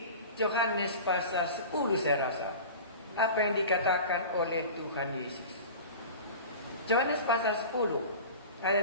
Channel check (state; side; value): inverted; both; correlation -0.35